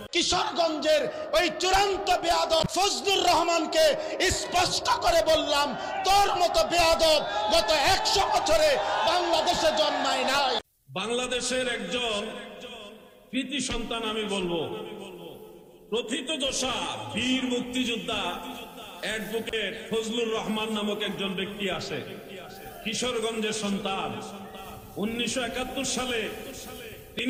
কিশোরগঞ্জের ওই চূড়ান্ত বেয়াদব ফজলুর রহমানকে স্পষ্ট করে বললাম, তোর মতো বেয়াদব গত 100 বছরে বাংলাদেশে জন্মায় নাই। বাংলাদেশের একজন কৃতি সন্তান আমি বলবো, প্রথিতযশা বীর মুক্তিযোদ্ধা অ্যাডভোকেট ফজলুর রহমান নামক একজন ব্যক্তি আসে, কিশোরগঞ্জের সন্তান। 1971 সালে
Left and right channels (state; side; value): identical; both; correlation 1.00